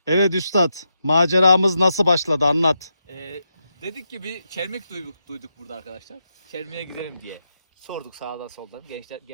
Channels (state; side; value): inverted; both; correlation -0.85